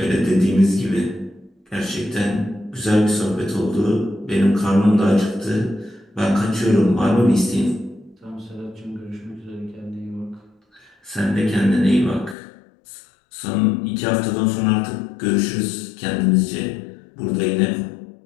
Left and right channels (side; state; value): right; drops out; at 12.4 s